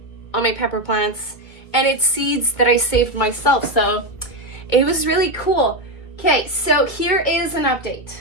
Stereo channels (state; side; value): late; right; 2.2 ms